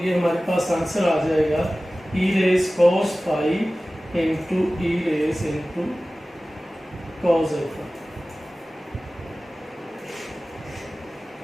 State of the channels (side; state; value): both; normal; correlation 0.97